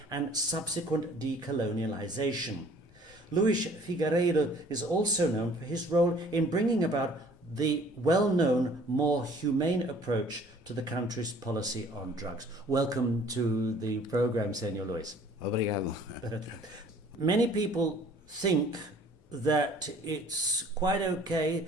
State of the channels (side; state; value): both; normal; correlation 0.54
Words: and subsequent decolonialization. Luis Fingueiredo is also known for his role in bringing about the well-known, more humane approach to the country's policy on drugs. Welcome to the program, Senor Luis. Obrigado. Many people think that it's quite okay